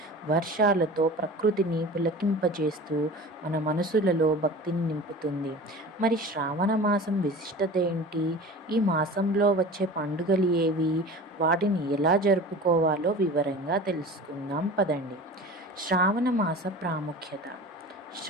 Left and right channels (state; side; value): normal; both; correlation 0.37